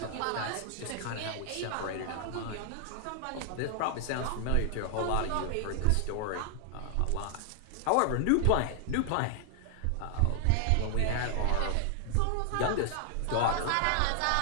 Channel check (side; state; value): both; different; correlation 0.00